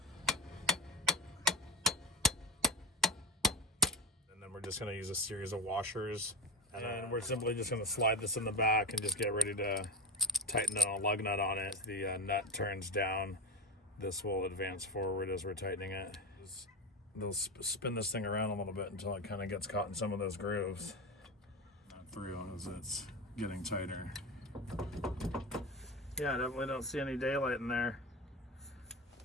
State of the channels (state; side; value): normal; both; correlation 0.19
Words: And then we're just gonna use a series of washers. And then we're simply just gonna slide this in the back and just get ready to tighten a lug nut on it. The nut turns down. This will advance forward as we're tightening it. They'll spin this thing around a little bit until it kind of gets caught in some of those grooves. Not through as it's getting tighter. Yeah, definitely don't see any daylight in there.